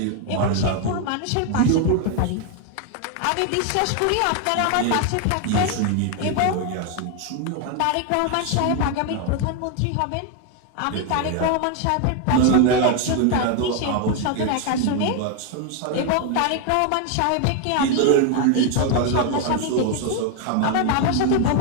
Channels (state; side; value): different; both; correlation 0.01